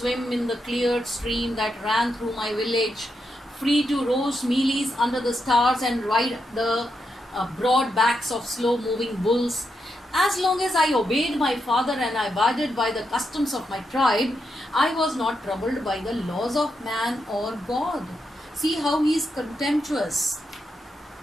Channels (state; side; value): normal; both; correlation 0.84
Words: in the cleared stream that ran through my village, free to roast mealies under the stars and ride the broad backs of slow-moving bulls. As long as I obeyed my father and I abided by the customs of my tribe, I was not troubled by the laws of man or God. See how he is contemptuous.